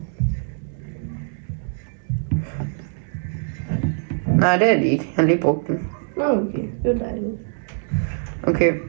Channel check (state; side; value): silent; left; 61 dB below the other